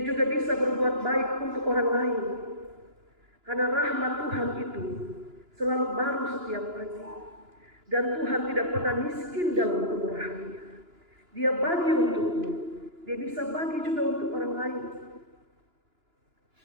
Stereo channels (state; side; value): late; left; 2.9 ms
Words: juga bisa berbuat baik untuk orang lain. Karena rahmat Tuhan itu selalu baru setiap pagi. Dan Tuhan tidak pernah miskin dalam kemurahannya. Dia bagi untukmu, Dia bisa bagi juga untuk orang lain.